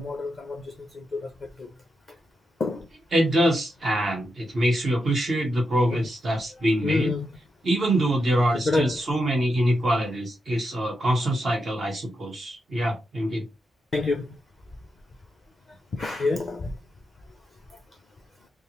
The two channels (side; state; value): both; normal; correlation 0.85